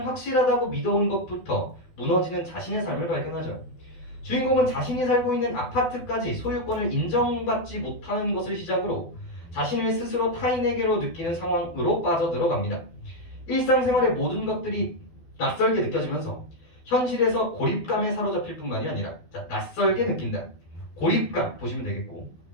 확실하다고 믿어온 것부터 무너지는 자신의 삶을 발견하죠. 주인공은 자신이 살고 있는 아파트까지 소유권을 인정받지 못하는 것을 시작으로 자신을 스스로 타인에게로 느끼는 상황으로 빠져들어갑니다. 일상생활의 모든 것들이 낯설게 느껴지면서 현실에서 고립감에 사로잡힐 뿐만이 아니라 낯설게 느낀다. 고립감 보시면 되겠고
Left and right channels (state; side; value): late; right; 12 ms